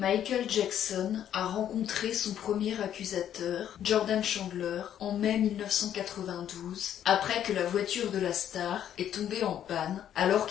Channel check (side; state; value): right; quieter; 10.3 dB